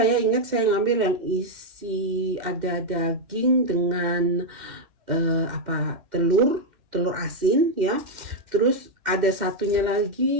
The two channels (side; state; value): left; late; 2.1 ms